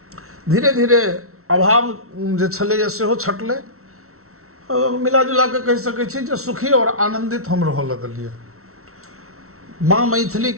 धीरे धीरे अभाव जे छलैया सेहो छटलै। मिला जुला के कहि सकै छी जे सुखी और आनंदित हम रह लगलिए। माँ मैथिली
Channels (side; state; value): left; late; 0.63 ms